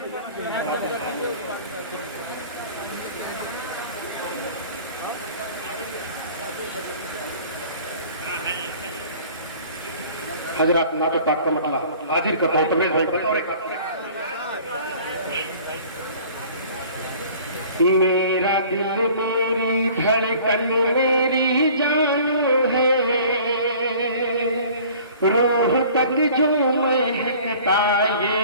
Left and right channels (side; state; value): both; inverted; correlation -0.48